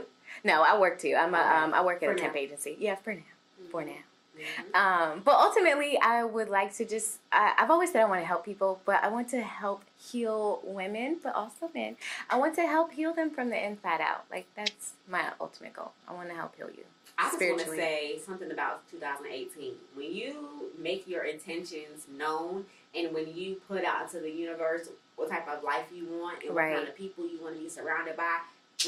No, I work too. I work at a temp agency. Yeah, for now. For now. But ultimately, I would like to just. I've always said I want to help people, but I want to help heal women, but also men. I want to help heal them from the inside out. Like that's my ultimate goal. I want to help heal you. I just want to say something about 2018. When you make your intentions known and when you put out into the universe what type of life you want and what kind of people you want to be surrounded by,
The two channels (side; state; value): both; identical; correlation 1.00